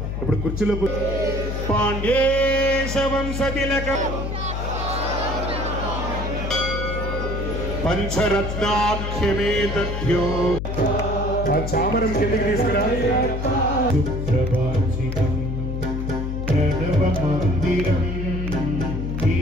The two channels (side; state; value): left; noise; hum, 3 dB below the sound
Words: ఇప్పుడు కుర్చీలో పాండ్యేశవంశతిలక పంచరత్నాఖ్యమే తథ్యో ఆ చామరం కిందకి తీసుకురా ప్రణవ మందిరం